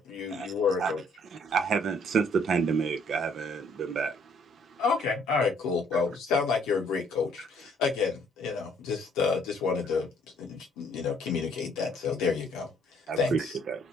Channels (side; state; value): both; normal; correlation 0.63